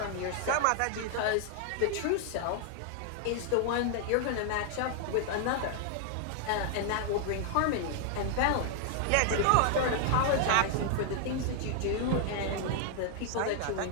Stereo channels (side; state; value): both; different; correlation 0.00